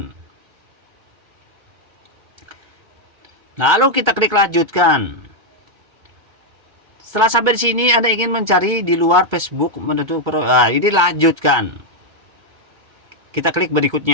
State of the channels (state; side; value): late; left; 2.1 ms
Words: Lalu kita klik lanjutkan. Setelah sampai di sini, Anda ingin mencari di luar Facebook, ini lanjutkan. Kita klik